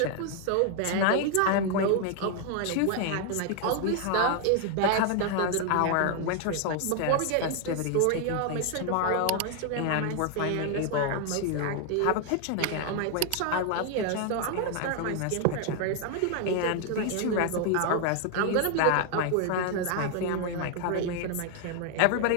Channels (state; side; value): different; both; correlation 0.00